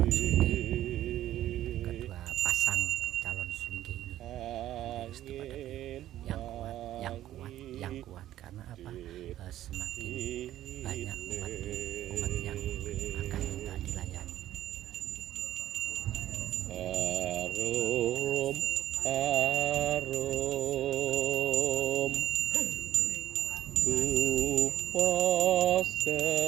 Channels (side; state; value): left; quieter; 13.2 dB